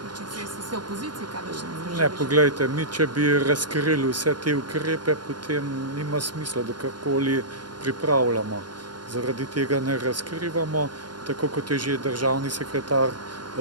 sredstev, ste v opoziciji, kaj Ne, poglejte, mi če bi razkrili vse te ukrepe, potem nima smisla, da karkoli pripravljamo. Zaradi tega ne razkrivamo, tako kot je že državni sekretar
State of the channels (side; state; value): left; late; 0.71 ms